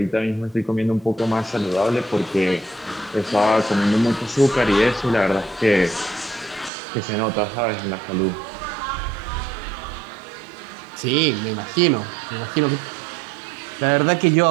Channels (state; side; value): drops out; left; at 6.7 s